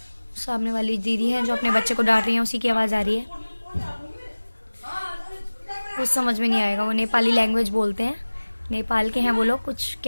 सामने वाली दीदी है जो अपने बच्चे को डांट रही है, उसी की आवाज़ आ रही है। कुछ समझ में नहीं आएगा, वो नेपाली लैंग्वेज बोलते हैं, नेपाल के हैं वो लोग, कुछ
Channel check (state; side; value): inverted; both; correlation -1.00